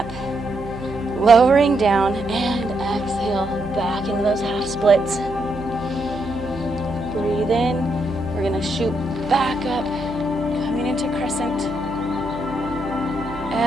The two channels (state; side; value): noise; right; hum, 14 dB below the sound